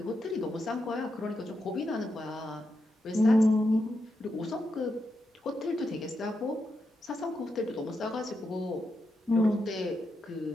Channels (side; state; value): both; normal; correlation 0.85